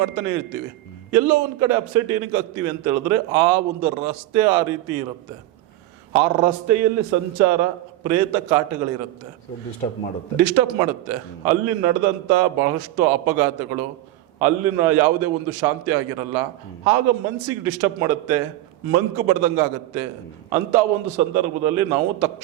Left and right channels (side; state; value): left; quieter; 15.3 dB